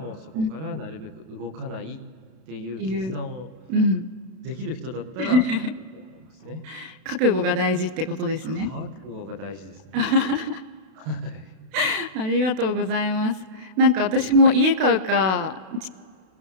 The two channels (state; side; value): late; left; 32 ms